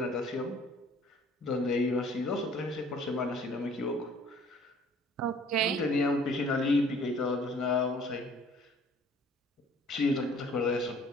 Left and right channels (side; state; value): both; normal; correlation 0.54